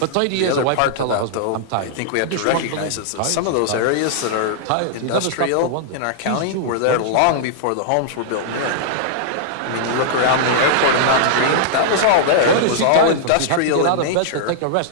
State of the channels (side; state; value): both; different; correlation -0.01